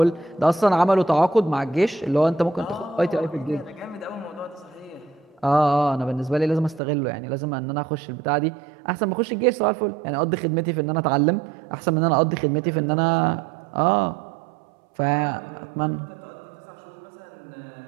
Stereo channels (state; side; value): drops out; left; at 6.8 s